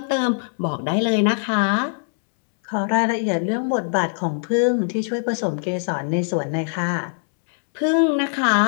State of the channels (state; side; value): silent; right; 64 dB below the other